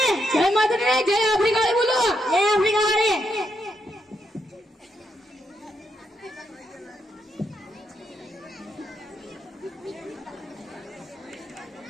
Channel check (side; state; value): both; normal; correlation 0.80